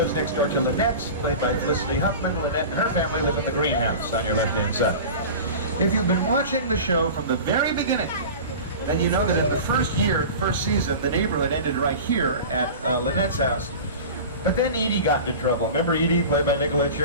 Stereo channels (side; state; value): both; inverted; correlation -0.33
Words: next door to Lynette, played by Felicity Huffman. Lynette and her family live in the greenhouse on your left-hand side. If you've been watching the show from the very beginning, then you know that in the first year, the first season, the neighborhood ended right here at Lynette's house. But then Edie got into trouble. Remember Edie, played by Nicolette